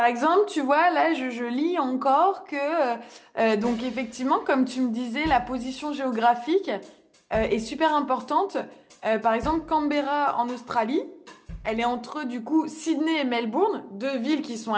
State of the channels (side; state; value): both; identical; correlation 1.00